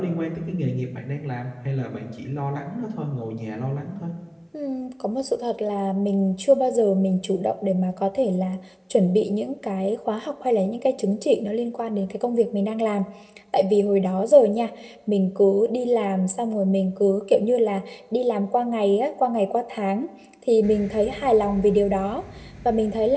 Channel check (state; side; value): identical; both; correlation 1.00